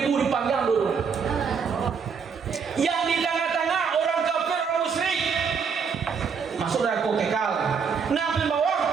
dipanggang dulu. Yang di tengah-tengah orang kafir, orang musyrik masuk neraka kekal. Nah di bawah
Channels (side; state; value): left; quieter; 6.1 dB